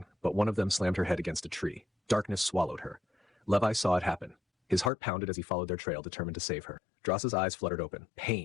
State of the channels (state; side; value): drops out; right; at 4.9 s